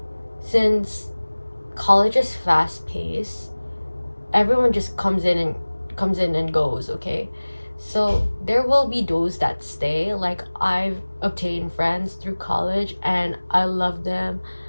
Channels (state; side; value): inverted; both; correlation -1.00